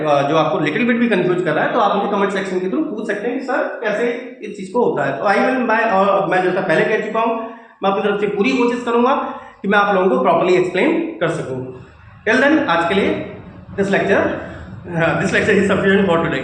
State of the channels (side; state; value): both; identical; correlation 1.00